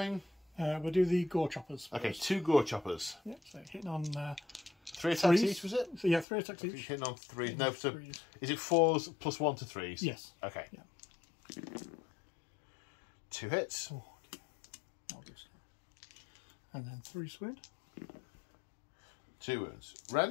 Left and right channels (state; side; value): drops out; right; at 6.2 s